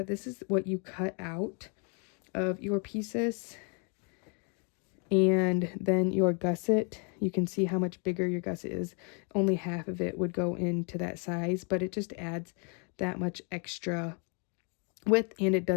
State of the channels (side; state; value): right; quieter; 37.6 dB